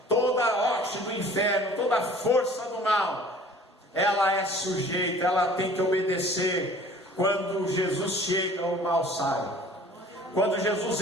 toda a hoste do inferno, toda a força do mal. Ela é sujeita, ela tem que obedecer. Quando Jesus chega, o mal sai. Quando Jesus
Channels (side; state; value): both; normal; correlation 0.48